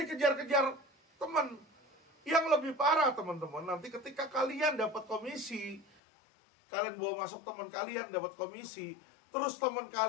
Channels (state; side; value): drops out; right; at 5.9 s